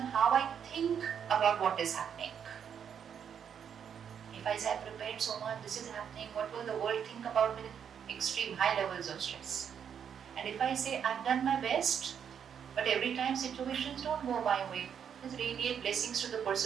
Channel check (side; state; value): left; quieter; 8.0 dB